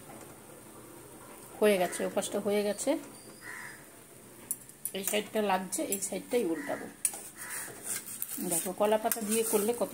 হয়ে গেছে, ওপাশটা হয়ে গেছে। এই সাইডটা লাগছে, এই সাইডটাই উল্টাবো। দেখো কলা পাতা দিয়ে করলে কত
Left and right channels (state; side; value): identical; both; correlation 1.00